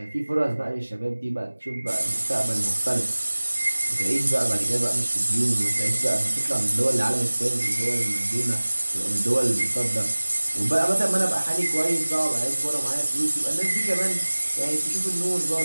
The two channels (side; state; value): both; inverted; correlation -1.00